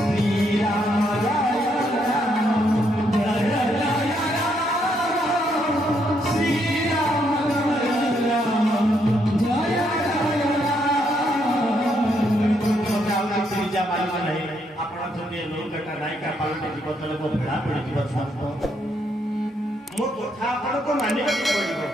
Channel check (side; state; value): both; normal; correlation 0.75